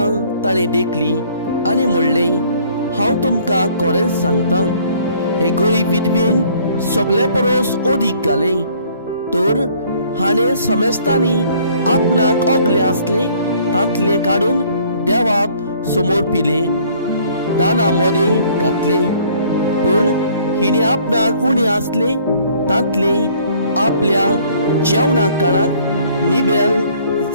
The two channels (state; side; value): inverted; both; correlation -0.58